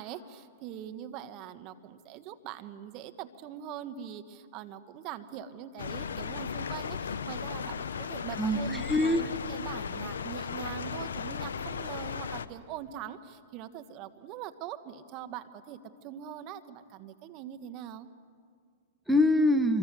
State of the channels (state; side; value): normal; both; correlation 0.35